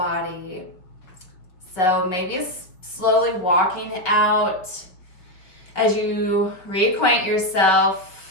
So maybe it's slowly walking out as you reacquaint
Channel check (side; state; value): right; late; 5.1 ms